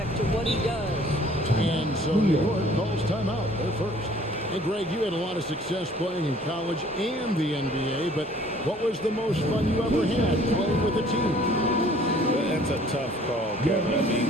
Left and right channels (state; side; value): normal; both; correlation 0.55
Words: to what he does. And so New York calls timeout. They're first. Hey, Greg, you had a lot of success playing in college and the NBA, but what was the most fun you ever had playing with a team? That's a tough call, Kevin. I mean,